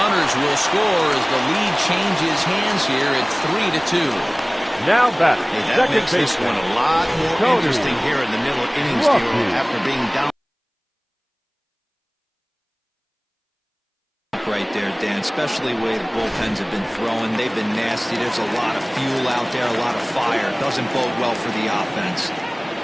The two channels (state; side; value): identical; both; correlation 1.00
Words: will score as the lead changes hands here at 3-2. Now batting. Hey, that makes this one a lot more interesting here in the middle innings after being down. Right there, Dan, especially the way the bullpens have been throwing. They've been nasty. There's a lot of fuel out there, a lot of fire. Doesn't bode well for the offense.